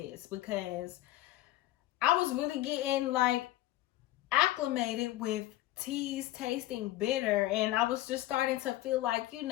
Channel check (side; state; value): right; quieter; 15.5 dB